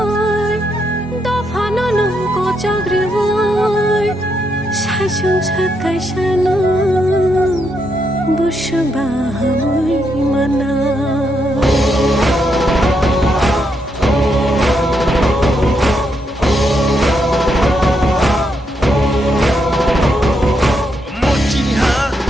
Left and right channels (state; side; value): normal; both; correlation 0.79